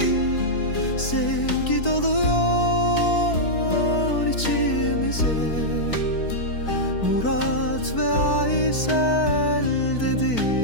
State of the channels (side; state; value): right; late; 4.5 ms